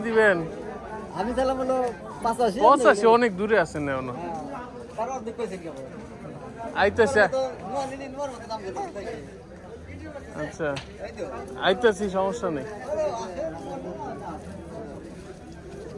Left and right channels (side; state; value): both; identical; correlation 1.00